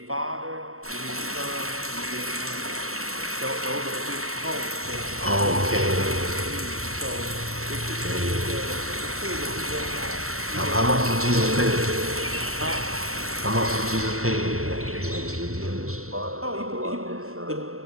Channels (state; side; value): late; left; 0.63 ms